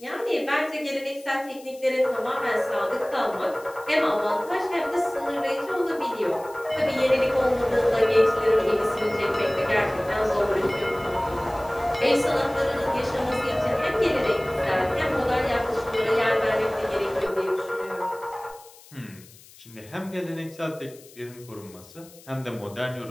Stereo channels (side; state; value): left; noise; hiss, 23 dB below the sound